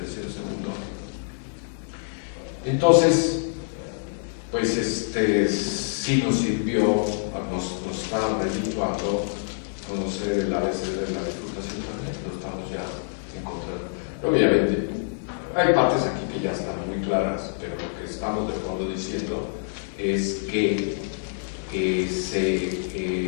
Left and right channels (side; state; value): right; silent; digital silence